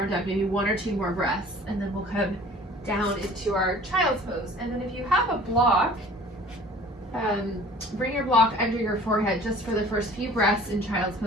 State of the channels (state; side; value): normal; both; correlation 0.48